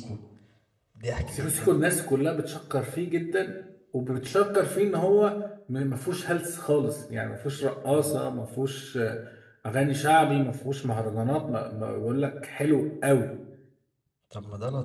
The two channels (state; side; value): identical; both; correlation 1.00